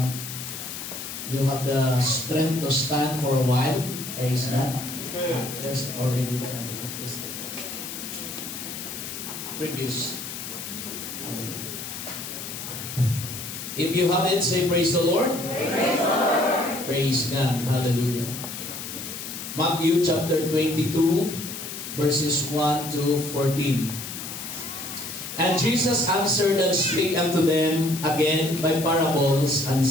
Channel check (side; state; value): left; noise; hiss, 8 dB below the sound